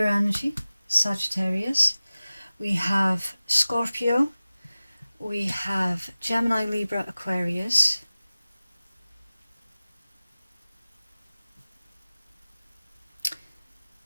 energy, Sagittarius, we have Scorpio, we have Gemini, Libra, Aquarius,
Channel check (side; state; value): both; inverted; correlation -0.97